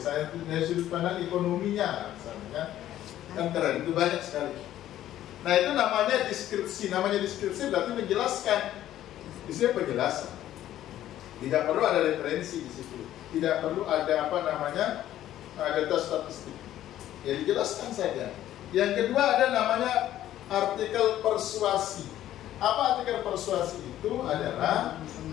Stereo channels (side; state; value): right; quieter; 12.7 dB